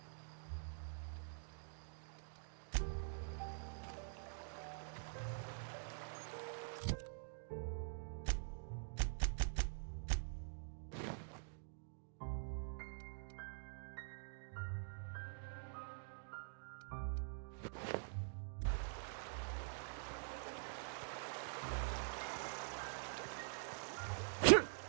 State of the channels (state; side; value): silent; left; digital silence